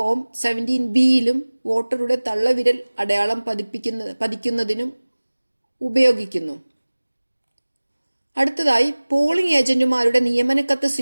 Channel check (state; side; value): inverted; both; correlation -1.00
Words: 17Bയിലും വോട്ടറുടെ തള്ളവിരൽ അടയാളം പതിക്കുന്നതിനും ഉപയോഗിക്കുന്നു. അടുത്തതായി പോളിംഗ് ഏജന്റുമാരുടെ നിയമനക്കത്ത്